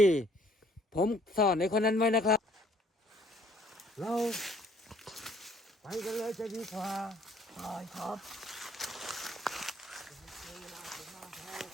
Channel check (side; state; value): both; normal; correlation 0.61